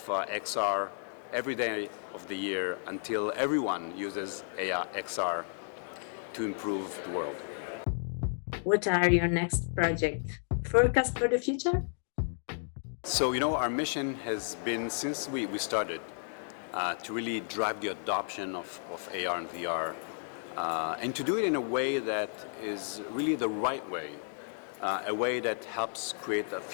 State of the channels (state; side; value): silent; right; digital silence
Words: XR every day of the year until everyone uses XR to improve the world. What are your next project? Forecast for the future? So, our mission has been, since we started, to really drive the adoption of AR and VR, and to do it in a way that is really the right way, a way that helps create a